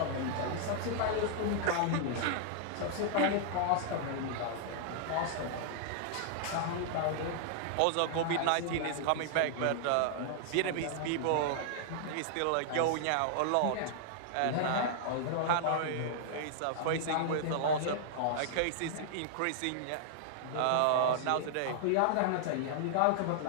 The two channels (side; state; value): both; different; correlation -0.01